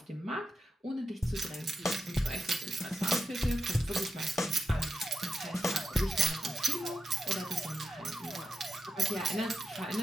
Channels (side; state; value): both; normal; correlation 0.85